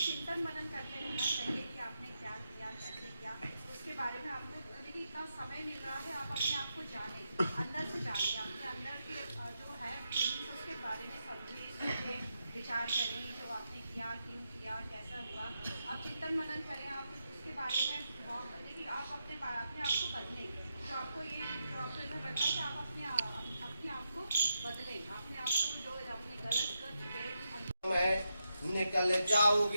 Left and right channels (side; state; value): both; inverted; correlation -0.85